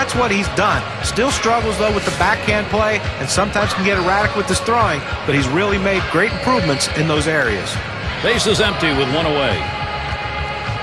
what he's done. Still struggles, though, with the backhand play, and sometimes can get erratic with his throwing, but he's really made great improvements in those areas. Base is empty with one away.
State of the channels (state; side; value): identical; both; correlation 1.00